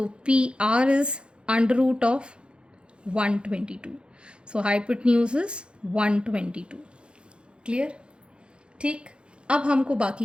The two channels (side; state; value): left; late; 0.055 ms